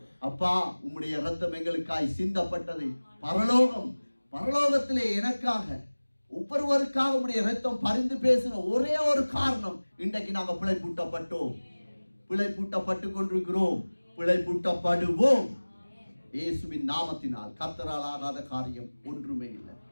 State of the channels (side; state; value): both; inverted; correlation -1.00